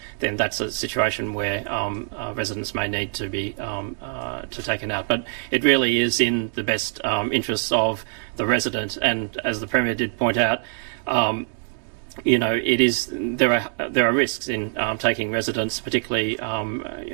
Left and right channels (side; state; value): left; silent; digital silence